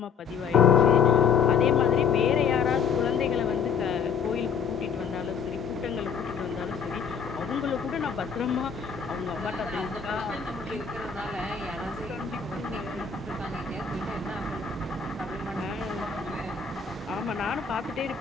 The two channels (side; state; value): right; quieter; 6.5 dB